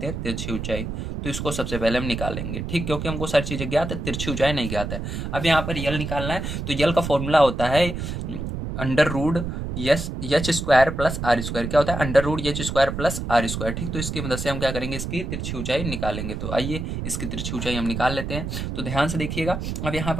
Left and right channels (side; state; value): right; noise; rumble, 5 dB below the sound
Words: हैं, तिरछी ऊंचाई। तो इसको सबसे पहले हम निकालेंगे, ठीक, क्योंकि हमको सारी चीजें ज्ञात है, तिरछी ऊंचाई नहीं ज्ञात है। अब यहाँ पर यल निकालना है, तो यल का फॉर्मूला होता है under root H square plus R square क्या होता है, under root H square plus R square. ठीक, तो इसकी मदद से हम क्या करेंगे, इसकी तिरछी ऊंचाई निकालेंगे। तो आइए इसकी तिरछी ऊंचाई हम निकाल लेते हैं। तो ध्यान से देखिएगा, अब यहाँ